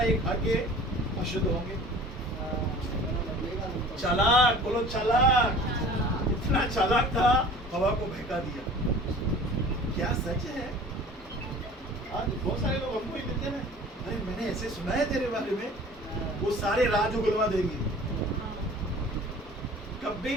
एक खा के अशुद्ध होंगे। चालाक, बोलो चालाक। इतना चालाक था, हवा को बहका दिया। क्या सच है? आज बहुत सारे लोग हमको ही देते हैं, अरे मैंने ऐसे सुना है तेरे बारे में, वो सारे राज उगलवा देंगे। कभी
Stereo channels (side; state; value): both; normal; correlation 0.44